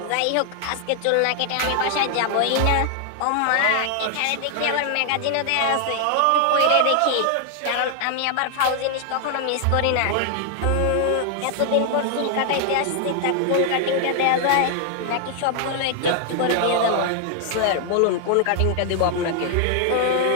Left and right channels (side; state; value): both; different; correlation 0.00